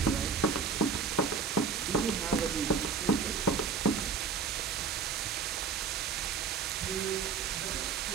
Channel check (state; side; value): quieter; left; 5.7 dB